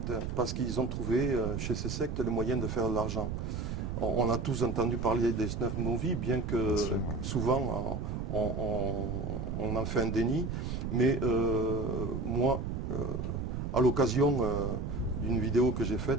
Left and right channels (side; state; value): right; noise; rumble, 3 dB below the sound